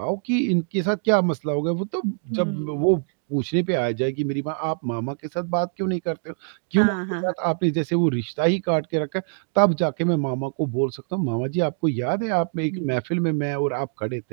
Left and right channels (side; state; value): left; silent; digital silence